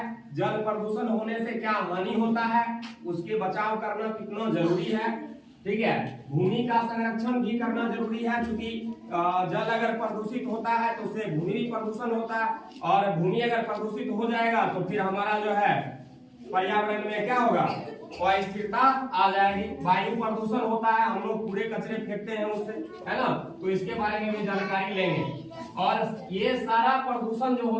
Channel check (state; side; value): identical; both; correlation 1.00